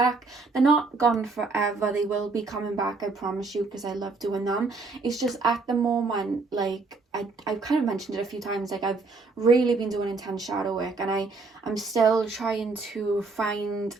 They're not gone forever. They will be coming back, I promise you, because I love doing them. It's just at the moment, like I've kind of mentioned it a few times, like I've really been doing intense shadow work and I'm still trying to find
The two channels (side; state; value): left; quieter; 4.0 dB